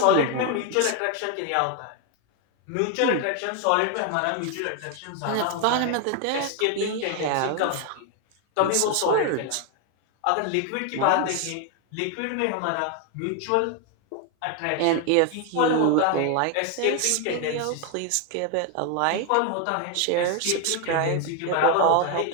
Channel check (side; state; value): both; different; correlation 0.01